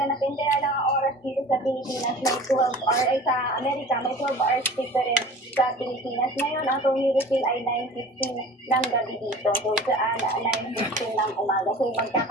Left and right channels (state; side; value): normal; both; correlation 0.41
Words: Kaya lang ang oras dito sa Pilipinas may 12 or ay sa Amerika may 12 hours difference sa Pilipinas. Ngayon, ang Tony Refill ay 9:15 ng gabi dito. So, sa 9:15 ng umaga. So,